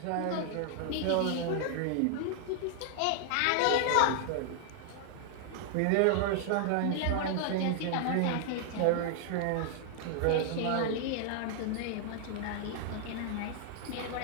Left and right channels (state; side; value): different; both; correlation 0.00